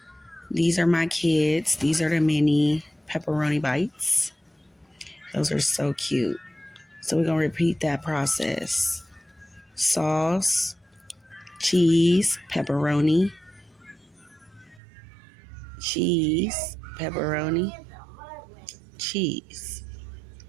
These are my kids. These are the mini pepperoni bites. Those are so cute. So we're going to repeat that process. Sauce, cheese, pepperoni, cheese, pepperoni, cheese.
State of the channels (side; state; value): left; drops out; at 14.8 s